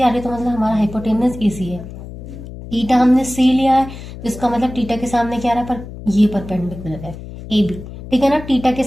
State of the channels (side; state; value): left; noise; hum, 13 dB below the sound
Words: आ रही है, तो मतलब हमारा हाइपोटेनस एसी है। टीटा हमने सी लिया है, जिसका मतलब टीटा के सामने क्या आ रहा है, पर ये परपेंडिकुलर है, ए बी, ठीक है ना। टीटा के